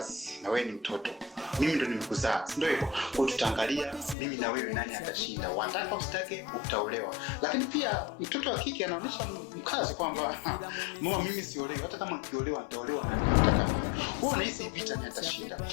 na wewe ni mtoto, mimi ndo nimekuzaa, ndio hivyo. Kwa tutaangalia mimi na wewe nani atashinda, wataka usitake utaolewa. Lakini pia mtoto wa kike anaonesha mkazo kwamba mama, mimi siolewi, hata kama nikiolewa nitaolewa na nataka mimi. Wewe unahisi vita ni atashinda?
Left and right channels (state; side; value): drops out; right; at 4.2 s